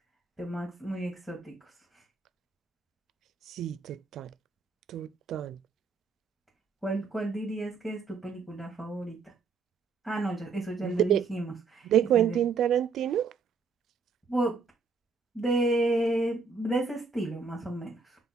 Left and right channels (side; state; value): left; quieter; 4.8 dB